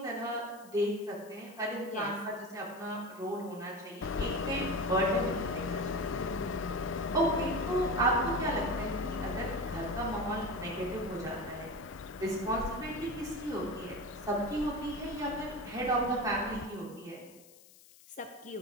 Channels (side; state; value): left; noise; hiss, 23 dB below the sound